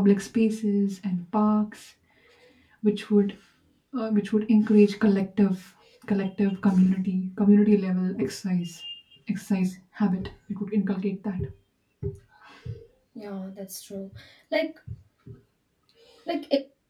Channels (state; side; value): identical; both; correlation 1.00